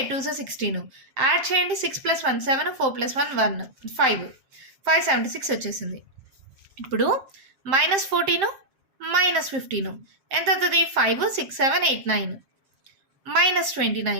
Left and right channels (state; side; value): late; left; 7.6 ms